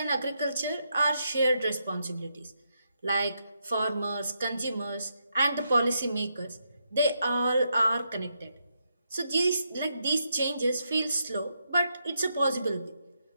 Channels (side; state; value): both; inverted; correlation -0.81